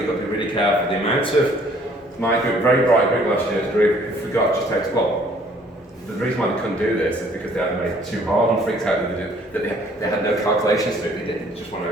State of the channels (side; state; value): both; normal; correlation 0.59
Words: got to be really careful. The amount of my group, very bright group last year's group, who forgot just how to, well, the reason why they couldn't do this is because they had made it too hard and freaked out that they had no calculations to it. They did just one